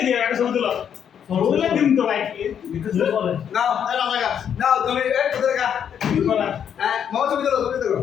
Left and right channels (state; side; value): quieter; right; 8.5 dB